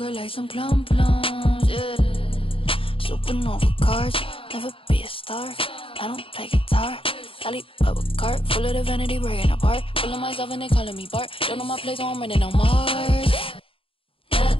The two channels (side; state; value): right; late; 0.26 ms